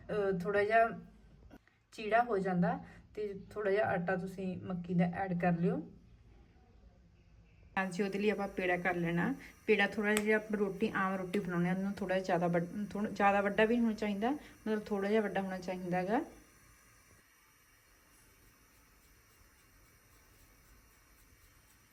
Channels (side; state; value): both; identical; correlation 1.00